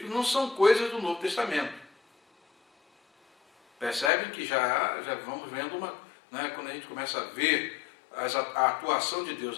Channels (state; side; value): drops out; right; at 4.1 s